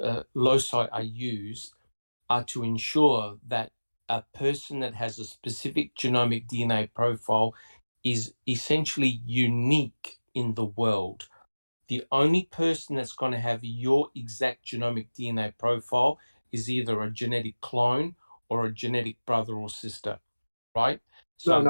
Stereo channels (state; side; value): inverted; both; correlation -1.00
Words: loci are used, are to ensure that a person that has a specific genomic DNA profile is essentially unique in the world. The only person that's going to have your exact genomic DNA profile is either a genetic clone or a genetic brother or sister, right? So